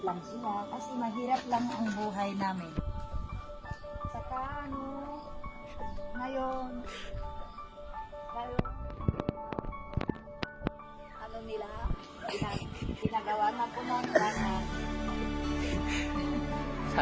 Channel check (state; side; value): identical; both; correlation 1.00